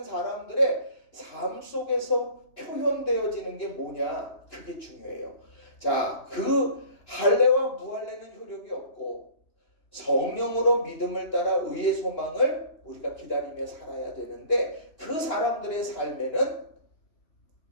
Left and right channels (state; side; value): late; right; 2.9 ms